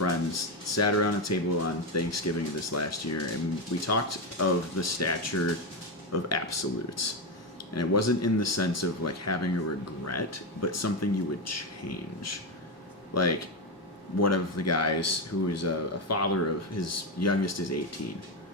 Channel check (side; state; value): both; normal; correlation 0.11